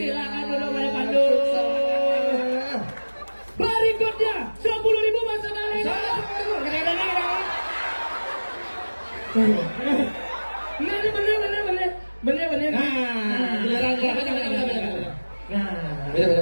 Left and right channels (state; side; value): inverted; both; correlation -1.00